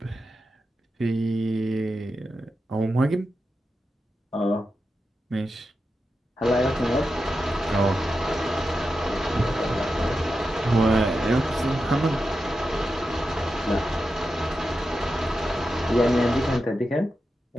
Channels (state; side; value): normal; both; correlation 0.89